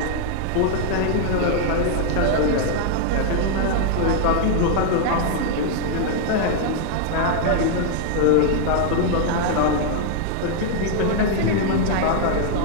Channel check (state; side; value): different; both; correlation 0.00